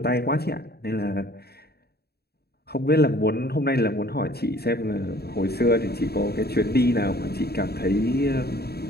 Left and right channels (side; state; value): right; late; 0.46 ms